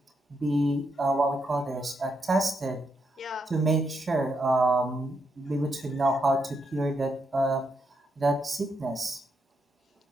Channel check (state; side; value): normal; both; correlation 0.80